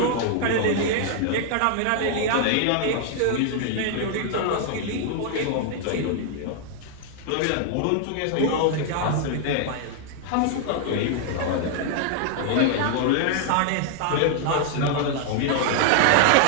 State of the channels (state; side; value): different; both; correlation 0.00